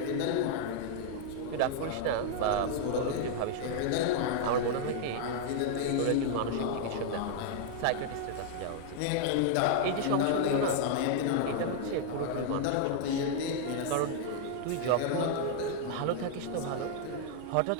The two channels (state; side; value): different; both; correlation 0.00